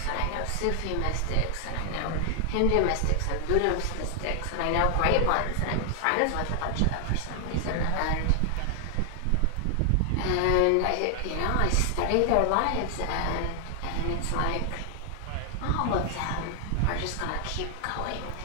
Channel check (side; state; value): both; different; correlation 0.00